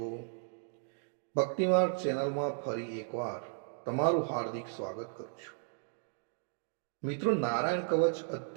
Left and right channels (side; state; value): left; silent; digital silence